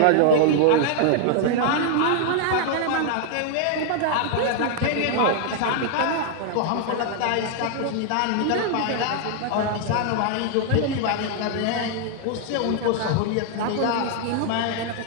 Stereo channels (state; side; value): different; both; correlation 0.00